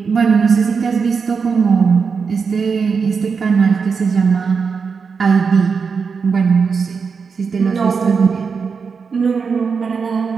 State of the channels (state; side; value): quieter; left; 5.5 dB